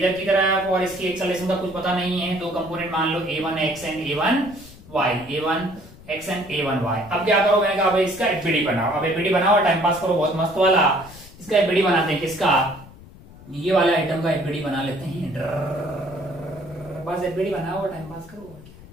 की तरफ, और इसकी एक्सेलरेशन का कुछ पता नहीं है। 2 कंपोनेंट मान लो A1 x and A1 y, A1 x and A1 y। अब क्या करो? मैंने कहा भाई इसका एफबीडी बनाओ। अब एफबीडी बनाओ, टाइम पास करो बहुत मस्त वाला। इसका एफबीडी बनाते हैं। किसका? ये वाला आइटम का एफबीडी बना लेते हैं। बस एफबीडी बनाओ, टाइम पास करो।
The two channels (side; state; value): left; noise; rumble, 20 dB below the sound